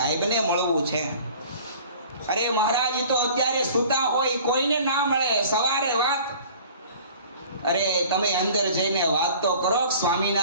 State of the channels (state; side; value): inverted; both; correlation -0.46